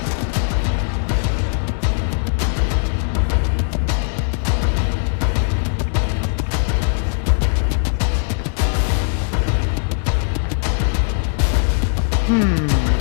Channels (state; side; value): silent; right; 66 dB below the other